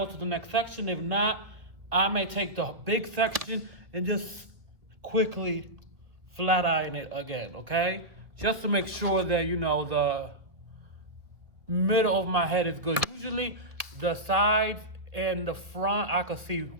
to the next section. If not, I may take the big section and just quickly flat iron it again, okay? Just to make sure that, you know, the middle of my head is good. Usually the sides and the front I can see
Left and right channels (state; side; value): late; left; 1.6 ms